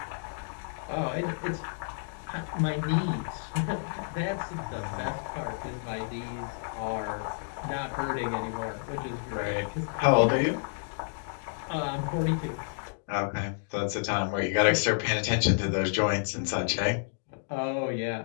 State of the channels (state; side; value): silent; right; digital silence